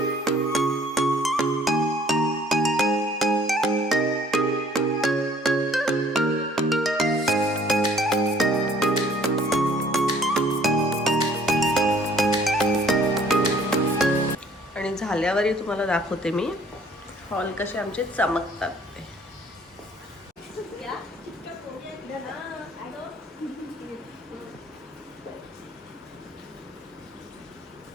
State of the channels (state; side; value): normal; both; correlation 0.57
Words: आणि झाल्यावरही तुम्हाला दाखवते मी हॉल कसे आमचे चमकतात ते.